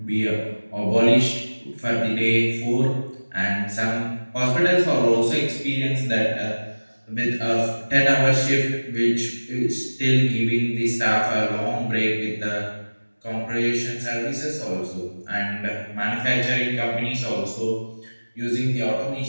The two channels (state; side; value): inverted; both; correlation -1.00